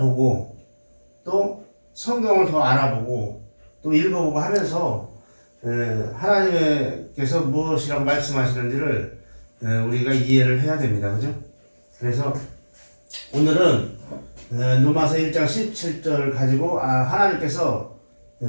또 성경을 더 알아보고 또 읽어보고 하면서 하나님께서 무엇이라고 말씀하시는지를 우리가 이해를 해야 됩니다. 그죠? 그래서 오늘은 로마서 1장 17절을 가지고 하나님께서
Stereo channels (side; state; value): both; inverted; correlation -1.00